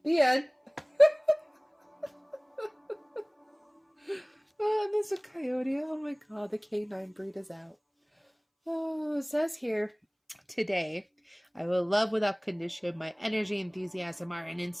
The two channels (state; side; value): identical; both; correlation 1.00